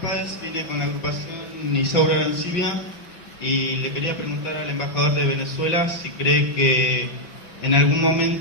vine con la agrupación Isaura Arancibia y le quería preguntar al embajador de Venezuela si cree que en algún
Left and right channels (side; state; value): right; late; 5.9 ms